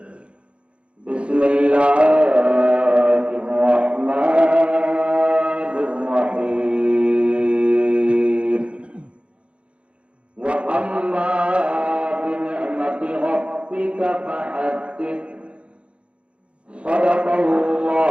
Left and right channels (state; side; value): late; left; 0.059 ms